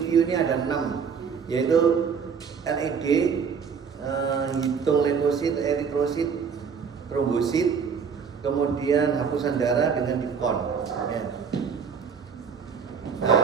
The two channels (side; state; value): left; quieter; 6.3 dB